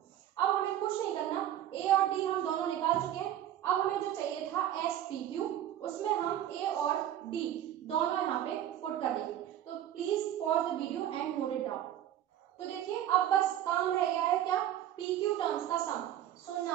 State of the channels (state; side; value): quieter; left; 11.6 dB